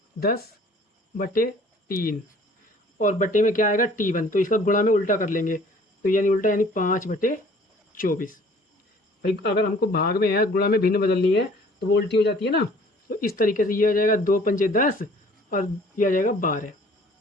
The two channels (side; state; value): both; normal; correlation 0.53